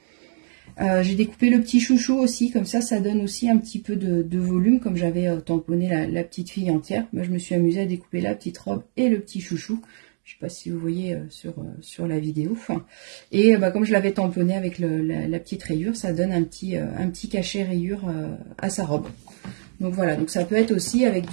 J'ai découpé le petit chouchou aussi, comme ça donne aussi un petit peu de volume. Comme j'avais tamponné la petite fille entière, moi, je me suis amusée à découper la petite robe et le petit chouchou. Je ne sais pas si vous voyez sur la vidéo. Et comme je l'avais tamponné avec la petite rayure, ça donne un petit cachet rayure à sa robe. Donc voilà, donc ça peut être aussi avec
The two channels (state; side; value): silent; left; digital silence